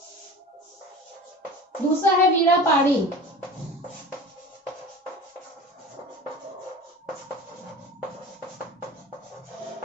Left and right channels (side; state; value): both; normal; correlation 0.36